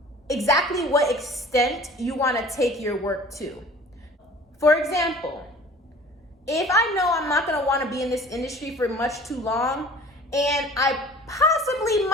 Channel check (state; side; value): normal; both; correlation 0.46